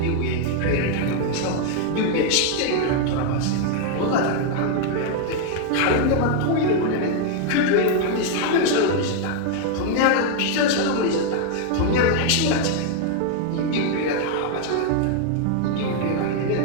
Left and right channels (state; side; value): different; both; correlation 0.00